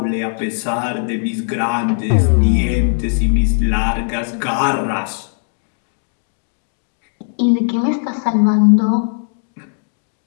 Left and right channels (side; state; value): right; silent; digital silence